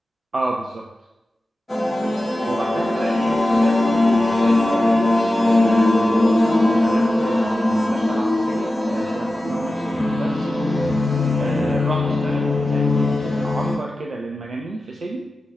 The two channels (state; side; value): normal; both; correlation 0.94